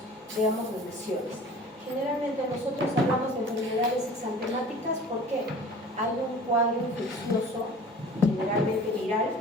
veamos las lesiones. Generalmente nosotros hablamos de enfermedades exantemáticas porque hay un cuadro infeccioso, generalmente viral,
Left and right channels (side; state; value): both; normal; correlation 0.43